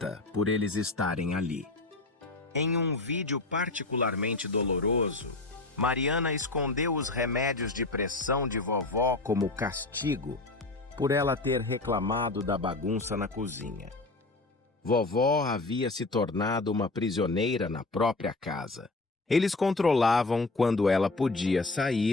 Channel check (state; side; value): quieter; right; 3.2 dB